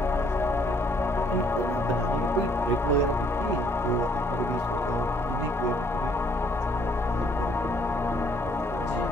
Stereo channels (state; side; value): normal; both; correlation 0.64